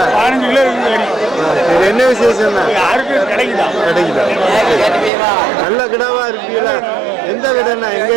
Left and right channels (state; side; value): drops out; left; at 5.1 s